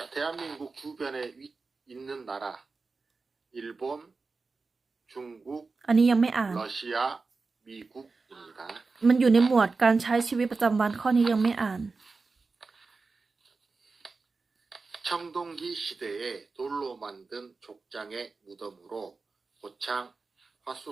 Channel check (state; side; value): quieter; left; 4.1 dB